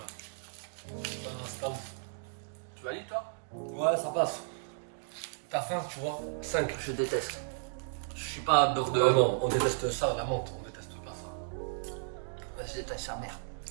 C'est pas ouf. Tu valides toi? Ouais, ça passe. T'as faim, tu vois. 5. Je déteste. Je suis pas beurre de. Non, on déteste ça, la menthe, on déteste pas ça. Je déteste sa mère.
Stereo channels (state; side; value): silent; left; digital silence